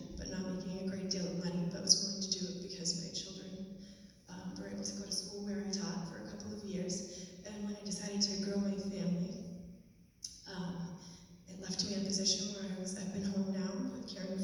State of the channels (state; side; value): identical; both; correlation 1.00